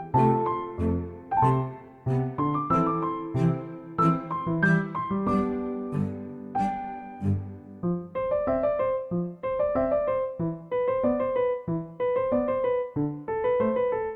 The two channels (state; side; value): identical; both; correlation 1.00